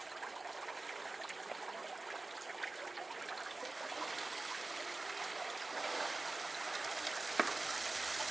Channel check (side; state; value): left; quieter; 3.2 dB